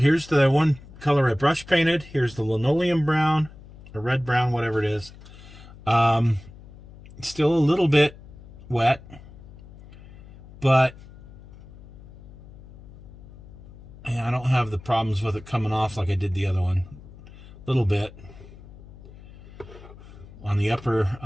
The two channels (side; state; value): left; noise; hum, 19 dB below the sound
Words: the one color I brush painted. Here's the linoleum brown, or red brown, whatever it is. Still a little bit wet, but yeah, I don't have the problems with it coming off like I did the other one. A little bit on the upper,